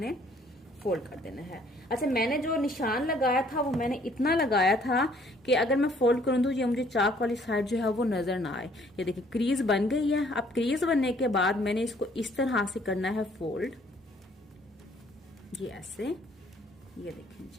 फोल्ड कर देना है। अच्छा, मैंने जो निशान लगाया था वो मैंने इतना लगाया था कि अगर मैं फोल्ड करूं तो ये मुझे चाक वाली साइड जो है वो नजर ना आए। ये देखिए क्रीज बन गई है। अब क्रीज बनने के बाद मैंने इसको इस तरह से करना है फोल्ड, ये ऐसे, ये देखें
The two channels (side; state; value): both; normal; correlation 0.61